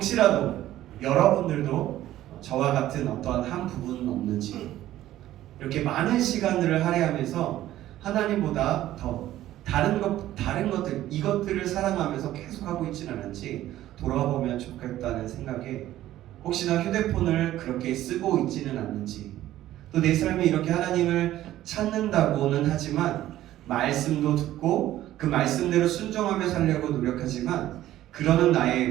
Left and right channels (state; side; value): quieter; left; 13.9 dB